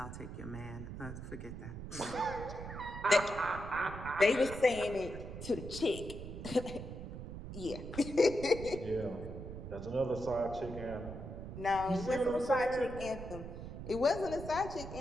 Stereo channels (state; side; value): noise; right; rumble, 9 dB below the sound